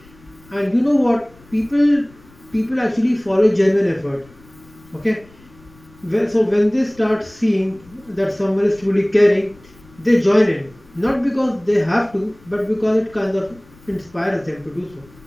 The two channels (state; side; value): noise; left; rumble, 26 dB below the sound